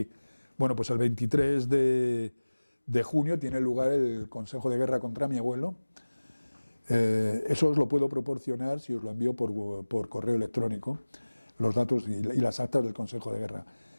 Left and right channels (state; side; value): inverted; both; correlation -1.00